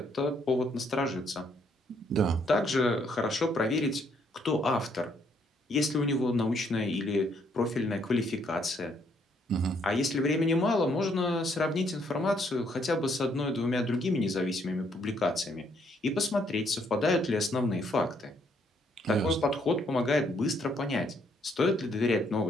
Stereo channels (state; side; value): normal; both; correlation 0.70